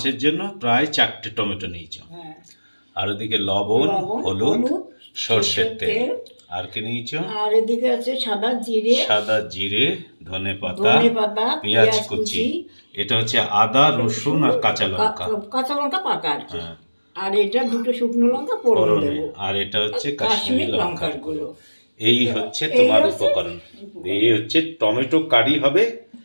জন্য প্রায় 4টে টমেটো নিয়েছো। আর ওদিকে লবণ, হলুদ, সরষের তেল। আর কি নিয়েছো? আর এদিকে আছে সাদা জিরে, ধনেপাতা, পেঁয়াজ কুচি। এটা হচ্ছে আদা, রসুন আর কাঁচা লঙ্কা। পাকা আর কি। আর এটা দুটো শুকনো লঙ্কা ফোড়ন দেব। আর এটা হচ্ছে কাশ্মীরি লঙ্কার গুঁড়ো। এই হচ্ছে তোমার উপকরণ। এই হচ্ছে টমেটো কারি হবে,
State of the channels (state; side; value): inverted; both; correlation -1.00